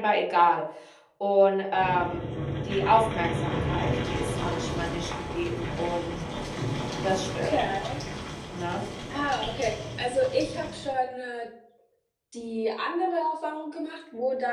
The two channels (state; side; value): identical; both; correlation 1.00